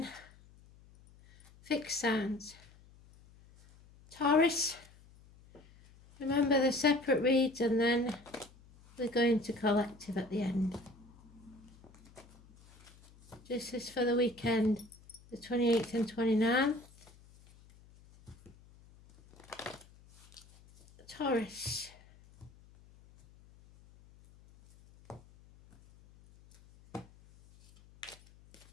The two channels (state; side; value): noise; left; hum, 25 dB below the sound